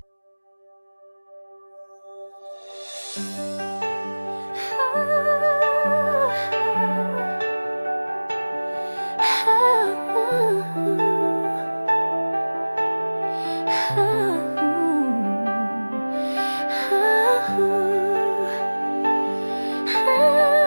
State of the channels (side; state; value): both; inverted; correlation -1.00